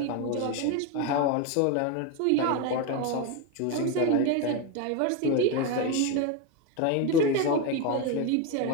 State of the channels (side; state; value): both; different; correlation 0.03